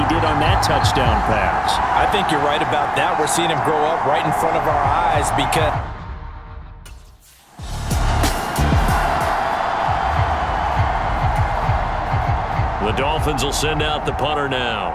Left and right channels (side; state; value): both; identical; correlation 1.00